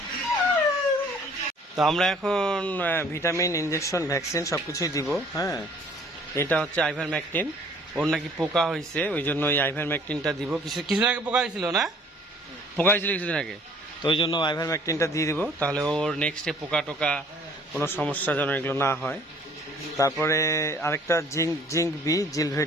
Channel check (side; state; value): both; normal; correlation 0.56